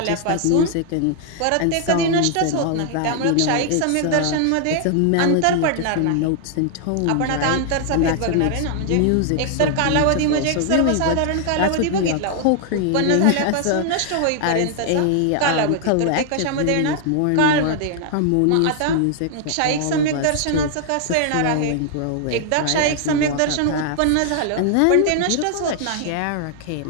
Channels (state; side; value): different; both; correlation 0.00